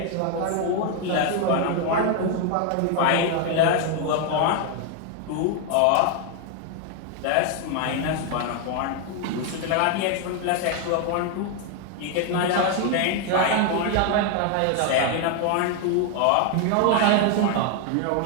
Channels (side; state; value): both; different; correlation 0.01